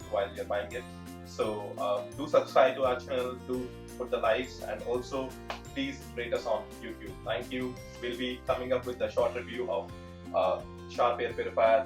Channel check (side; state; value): both; identical; correlation 1.00